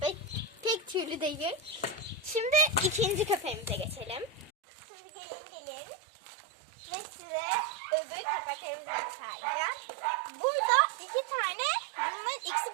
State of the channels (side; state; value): left; drops out; at 4.5 s